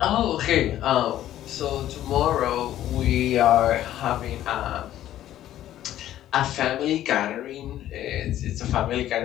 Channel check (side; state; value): right; quieter; 12.7 dB